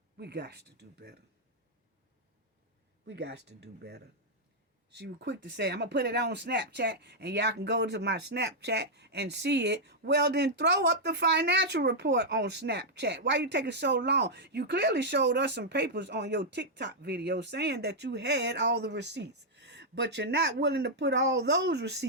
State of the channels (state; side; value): normal; both; correlation -0.05